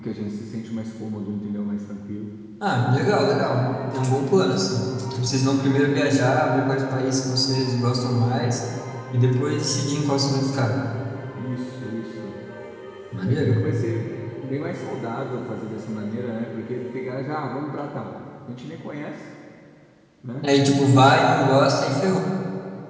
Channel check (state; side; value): identical; both; correlation 1.00